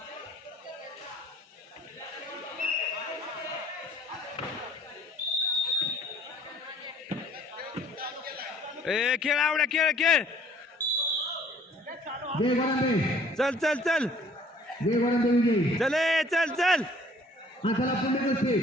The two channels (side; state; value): both; normal; correlation 0.56